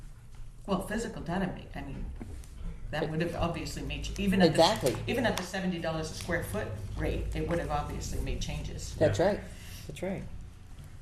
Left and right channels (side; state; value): both; identical; correlation 1.00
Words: Well, physical data, that would have obviously made, even at Exactly. even at the $70 a square foot rate, it would have obviously made changes. That's right. That's right.